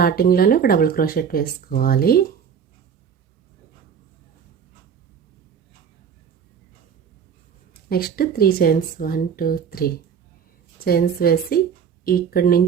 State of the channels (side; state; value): left; quieter; 7.3 dB